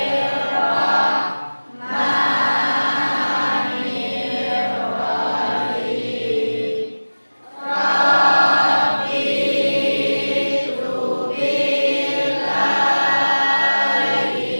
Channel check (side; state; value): both; inverted; correlation -1.00